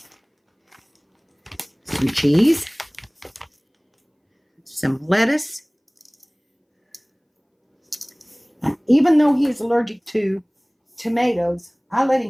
Some cheese, some lettuce. Even though he is allergic to tomatoes, I let him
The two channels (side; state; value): both; identical; correlation 1.00